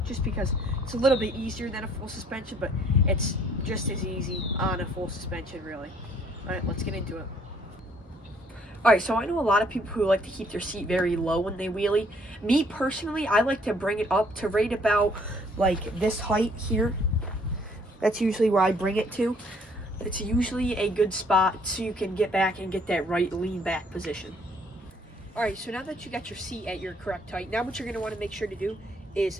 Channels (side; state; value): both; normal; correlation 0.63